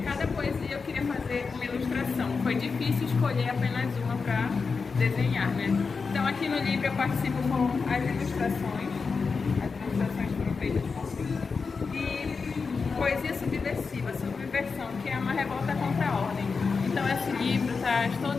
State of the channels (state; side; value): quieter; right; 4.9 dB